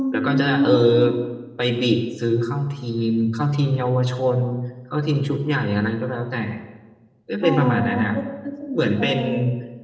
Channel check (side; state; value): both; identical; correlation 1.00